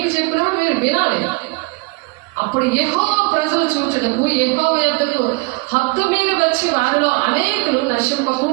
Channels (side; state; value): left; quieter; 27.0 dB